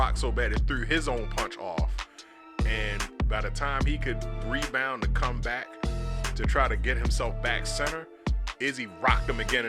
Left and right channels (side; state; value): both; identical; correlation 1.00